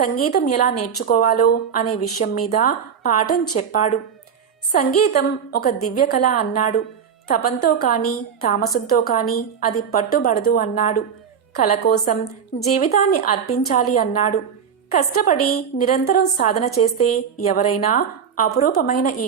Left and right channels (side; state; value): left; quieter; 7.4 dB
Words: ఎలా నేర్చుకోవాలో అనే విషయం మీద పాఠం చెప్పాడు. సంగీతం ఒక దివ్య కళ అన్నాడు. తపంతో కాని తామసంతో కాని అది పట్టుబడదు అన్నాడు. కళ కోసం జీవితాన్ని అర్పించాలి అన్నాడు. కష్టపడి నిరంతరం సాధన చేస్తే ఎవరైనా అపురూపమైన ఈ